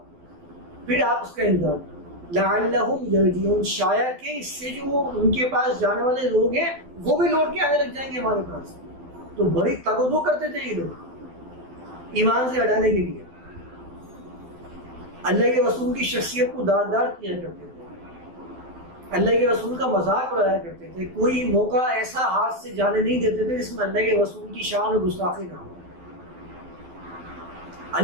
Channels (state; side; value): late; left; 12 ms